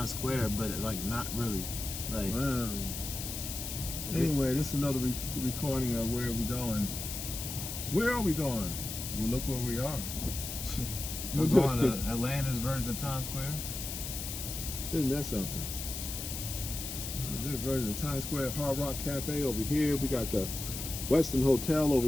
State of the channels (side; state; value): left; noise; hiss, 6 dB below the sound